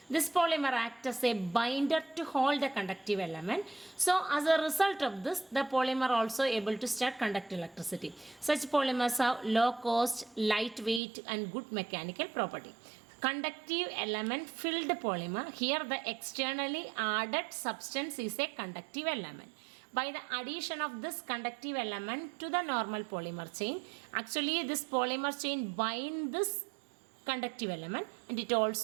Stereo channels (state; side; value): drops out; left; at 11.0 s